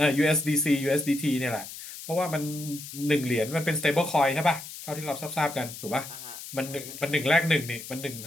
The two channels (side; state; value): left; noise; hiss, 12 dB below the sound